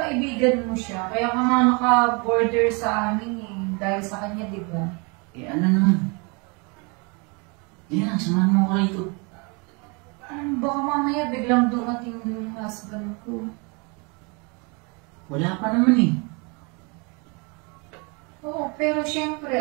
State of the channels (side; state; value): left; quieter; 31.4 dB